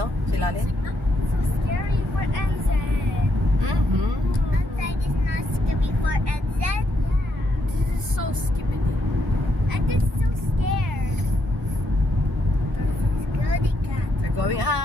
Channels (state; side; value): normal; both; correlation 0.77